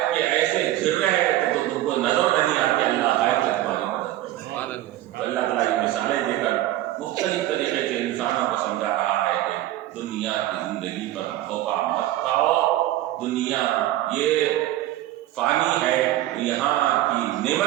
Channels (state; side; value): quieter; left; 14.7 dB